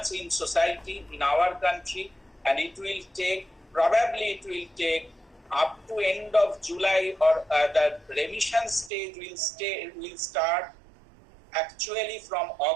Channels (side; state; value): left; drops out; at 8.9 s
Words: in society, in our country, and it will take up to end of July, or the remission stage will start actually from